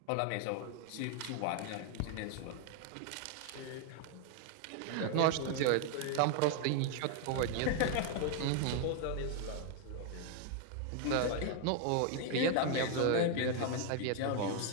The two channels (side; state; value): both; different; correlation 0.00